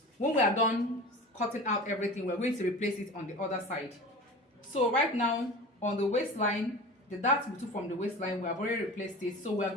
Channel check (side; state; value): both; normal; correlation 0.35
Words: When we are done cutting out everything, we're going to replace it on the other side. So right now on the waistline, the dart we took from the waistline, we have already replaced it. So we are